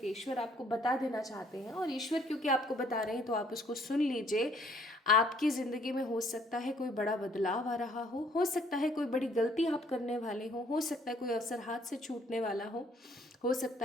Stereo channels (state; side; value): normal; both; correlation 0.63